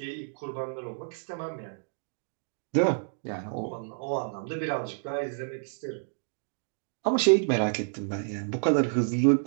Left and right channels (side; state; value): left; silent; digital silence